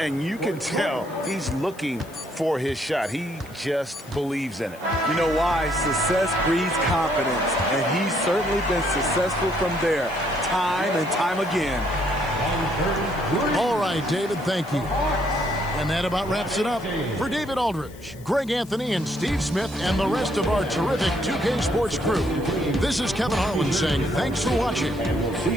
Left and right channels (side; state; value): left; noise; hiss, 23 dB below the sound